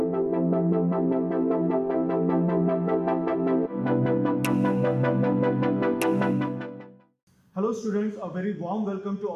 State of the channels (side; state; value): both; identical; correlation 1.00